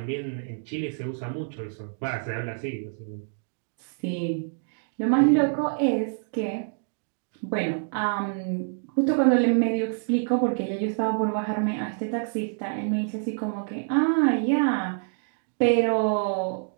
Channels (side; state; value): left; silent; digital silence